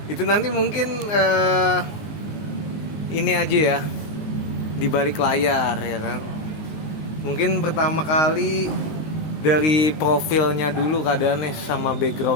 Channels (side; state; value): right; late; 19 ms